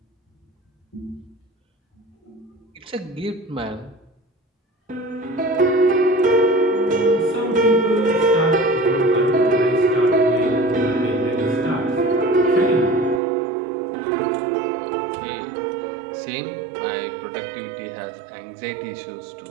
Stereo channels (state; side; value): drops out; left; at 13.2 s